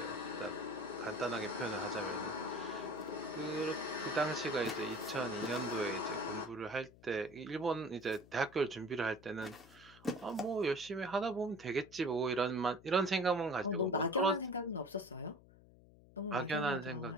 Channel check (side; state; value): left; noise; hum, 23 dB below the sound